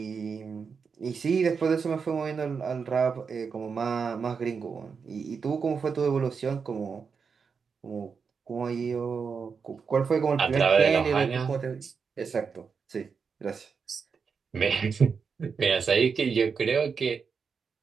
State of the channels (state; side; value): quieter; left; 5.7 dB